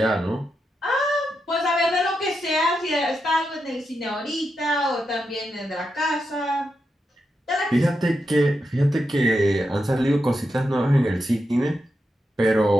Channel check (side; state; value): both; normal; correlation 0.86